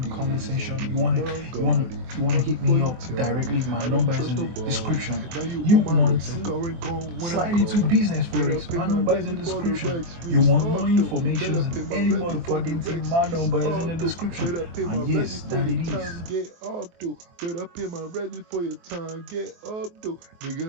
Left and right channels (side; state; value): left; late; 23 ms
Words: comment section. You wanna hit me up directly. My number is in the description. You want to slide into business forex? My number is in the description. You want more information than any motherfucking thing? My number is in the description. And yes, that it is. Get up, though. Better pay my ready for your time. Get up, though.